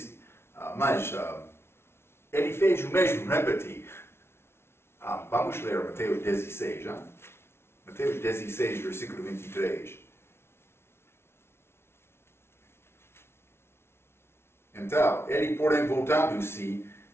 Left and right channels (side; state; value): right; late; 0.12 ms